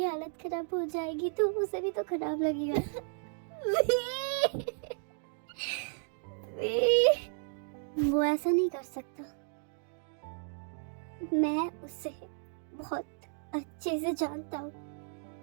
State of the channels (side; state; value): left; silent; digital silence